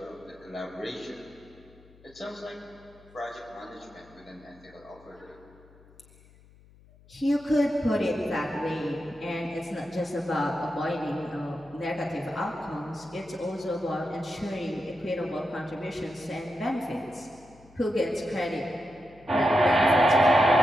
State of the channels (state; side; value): noise; left; hum, 25 dB below the sound